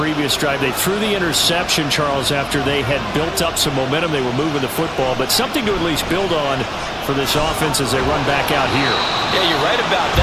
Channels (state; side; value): identical; both; correlation 1.00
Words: drive. They threw the interception, Charles, after they had built up some momentum. They were moving the football, but something to at least build on for this offense as they run back out here. Yeah, you're right about